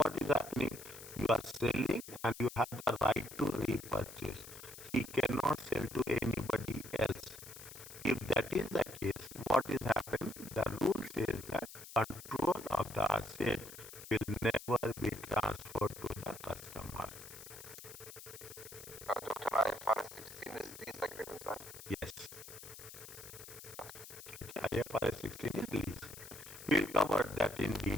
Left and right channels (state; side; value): noise; left; hiss, 14 dB below the sound